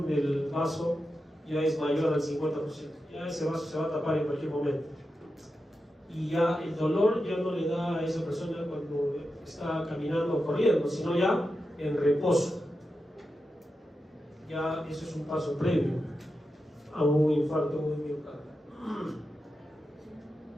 del vaso ya es mayor al 50%, ya ese vaso se va a tapar en cualquier momento. Y ya el dolor ya no le da a esa persona cuando está caminando o corriendo, sino ya en reposo. Ya eso es un paso previo a un infarto de miocardio.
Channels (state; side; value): normal; both; correlation 0.89